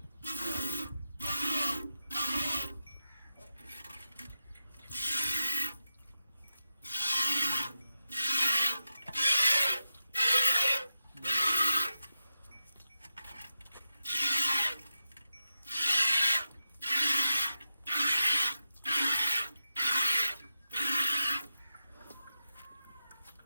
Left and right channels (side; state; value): both; inverted; correlation -0.88